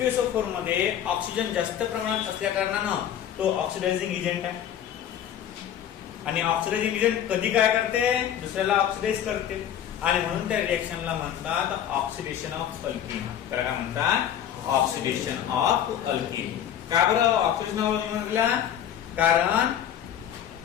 मध्ये ऑक्सिजन जास्त प्रमाणात असल्या कारणानं तो ऑक्सिडायझिंग एजंट आहे. आणि ऑक्सिडायझिंग एजंट कधी काय करते दुसऱ्याला ऑक्सिडाइज करते आणि म्हणून त्या रिएक्शनला म्हणतात ऑक्सिडेशन ऑफ अल्किन. त्याला काय म्हणतात ऑक्सिडेशन ऑफ अल्किन. का बरं ऑक्सिडेशन ऑफ अल्किन म्हटलं कारण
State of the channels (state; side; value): quieter; right; 10.1 dB